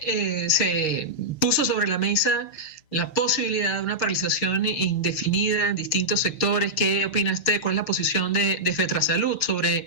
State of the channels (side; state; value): right; late; 6.5 ms